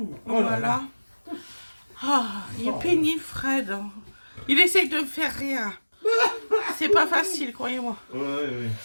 Oh Voilà. là là. Ah, il est pénible, Fred. Il essaye de me faire rien. C'est pas facile, croyez-moi. Ouais,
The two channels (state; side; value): inverted; both; correlation -1.00